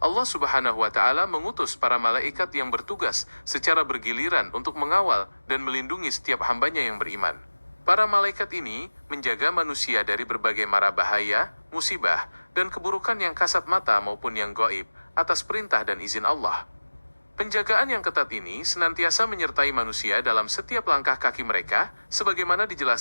Allah Subhanahu wa Ta'ala mengutus para malaikat yang bertugas secara bergiliran untuk mengawal dan melindungi setiap hambanya yang beriman. Para malaikat ini menjaga manusia dari berbagai mara bahaya, musibah, dan keburukan yang kasat mata maupun yang gaib atas perintah dan izin Allah. Penjagaan yang ketat ini senantiasa menyertai manusia dalam setiap langkah kaki mereka, sebagaimana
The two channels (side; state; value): both; inverted; correlation -1.00